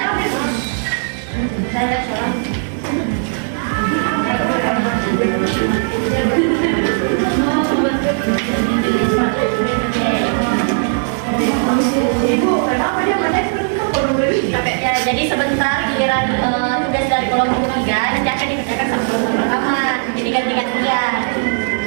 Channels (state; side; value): silent; left; 68 dB below the other